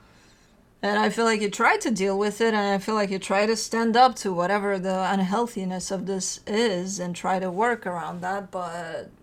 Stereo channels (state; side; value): identical; both; correlation 1.00